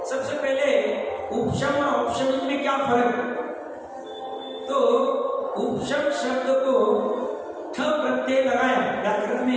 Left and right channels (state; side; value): identical; both; correlation 1.00